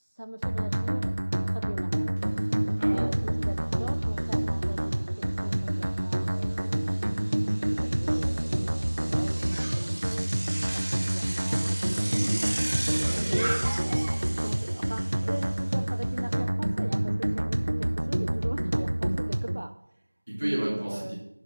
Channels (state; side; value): inverted; both; correlation -1.00